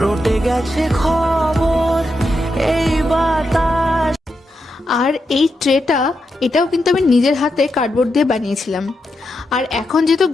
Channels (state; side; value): normal; both; correlation 0.85